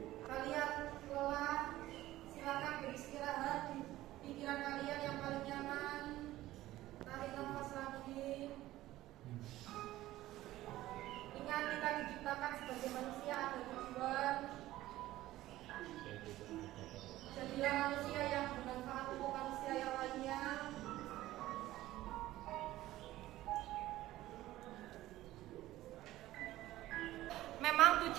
Kalian lelah, silakan beristirahat di pikiran kalian yang paling nyaman. Tarik nafas lagi. Ingat, kita diciptakan sebagai manusia ada tujuan. Jadilah manusia yang bermanfaat untuk manusia yang lainnya. Memang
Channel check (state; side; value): quieter; left; 15.7 dB